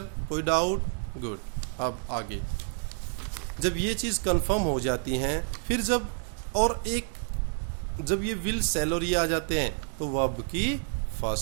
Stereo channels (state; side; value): silent; left; digital silence